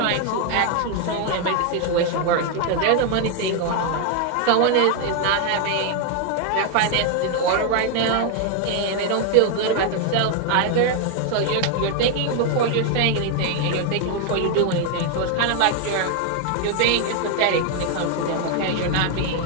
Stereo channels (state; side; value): different; both; correlation 0.00